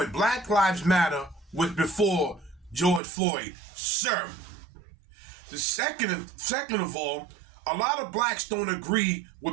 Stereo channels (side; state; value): left; drops out; at 3.0 s